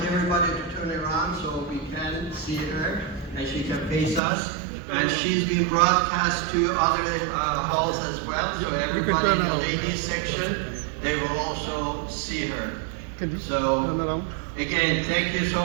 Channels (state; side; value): drops out; left; at 4.2 s